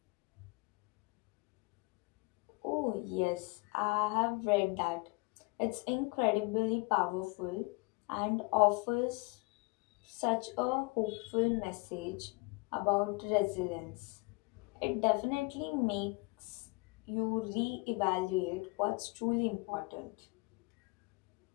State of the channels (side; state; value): right; quieter; 27.2 dB